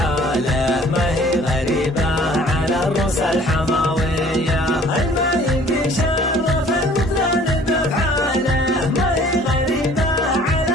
ما هي غريبة على الروس الحماوية.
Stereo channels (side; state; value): both; normal; correlation 0.53